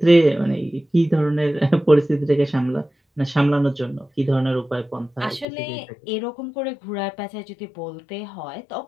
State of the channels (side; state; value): right; drops out; at 5.5 s